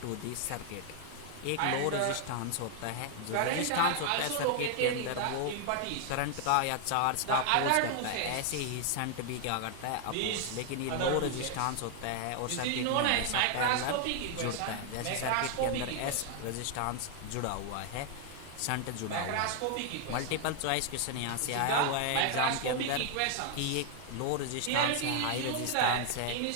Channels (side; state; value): both; different; correlation 0.00